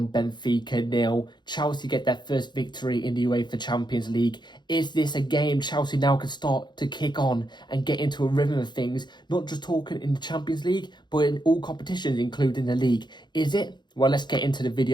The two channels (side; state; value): right; late; 0.21 ms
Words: Benfica 0. Chelsea get their first victory in the UEFA Champions League. Is this a game Chelsea now can start to kick on and get into a rhythm of things? Not just talking in the Champions League, but in all competitions, including the league. Is it? Well, let's get into the